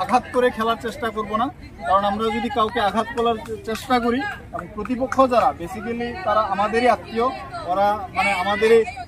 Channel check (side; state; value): both; identical; correlation 1.00